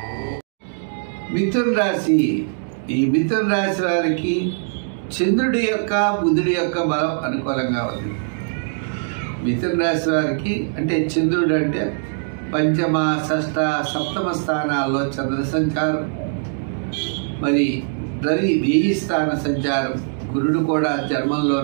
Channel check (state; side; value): silent; left; digital silence